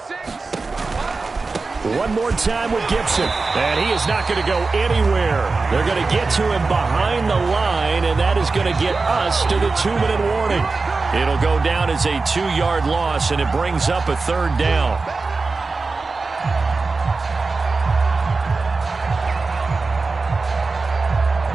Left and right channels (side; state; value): left; quieter; 4.0 dB